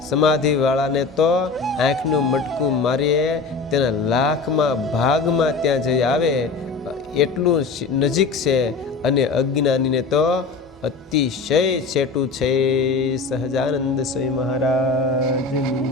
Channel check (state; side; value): quieter; right; 4.3 dB